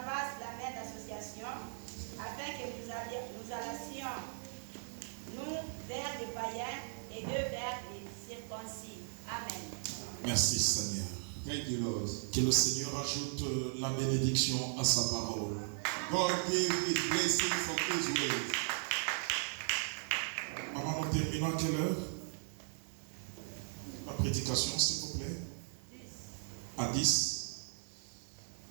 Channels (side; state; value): left; silent; digital silence